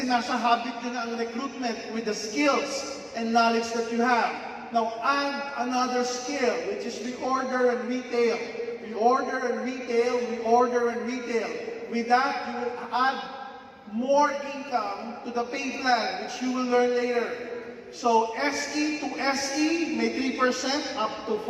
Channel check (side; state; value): both; identical; correlation 1.00